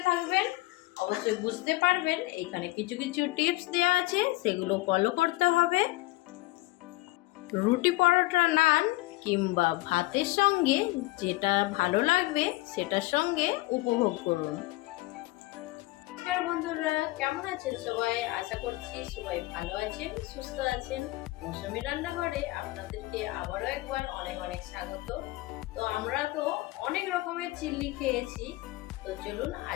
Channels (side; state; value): right; quieter; 20.3 dB